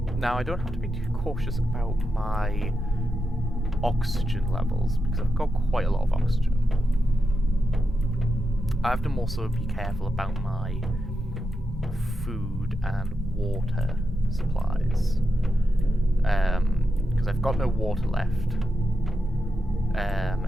Now, I don't have to be too cautious about my oxygen levels because I've got quite a lot of oxygen. I have to also be careful about my food and water supplies, because I've got no water left.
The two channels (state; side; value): normal; both; correlation 0.87